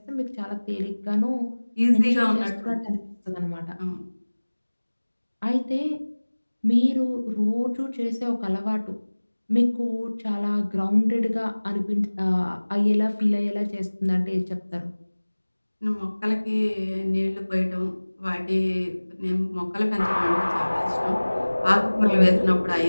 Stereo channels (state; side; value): inverted; both; correlation -1.00